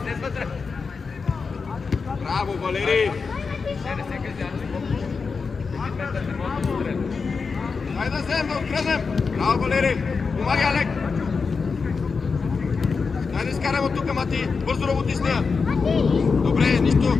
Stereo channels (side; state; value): right; quieter; 5.0 dB